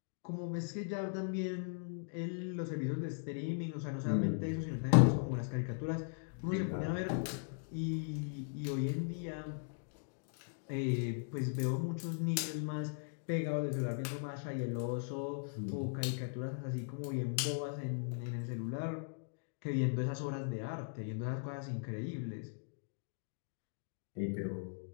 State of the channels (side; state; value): right; silent; digital silence